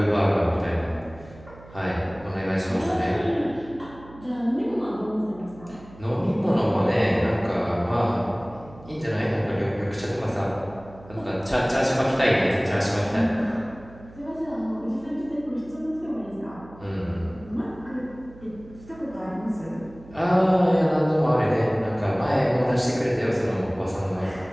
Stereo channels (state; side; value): noise; right; hum, 20 dB below the sound